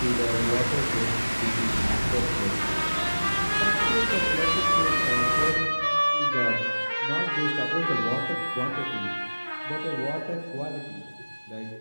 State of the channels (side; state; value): both; inverted; correlation -1.00